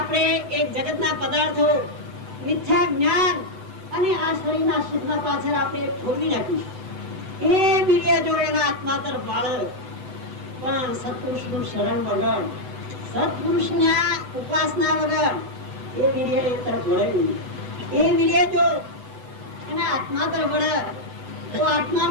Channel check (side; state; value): left; late; 7.8 ms